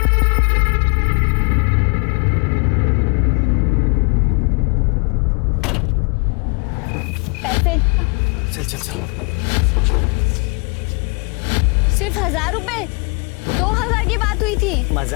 पैसे चल चल चल। सिर्फ 1000 रुपए? 2000 की बात हुई थी।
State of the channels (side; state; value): right; quieter; 34.2 dB